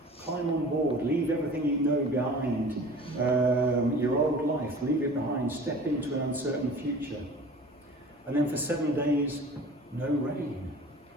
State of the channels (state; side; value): normal; both; correlation 0.42